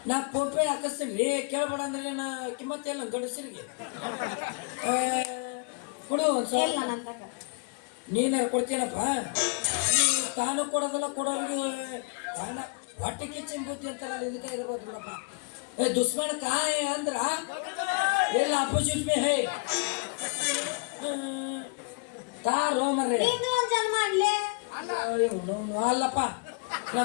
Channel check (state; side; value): quieter; right; 34.6 dB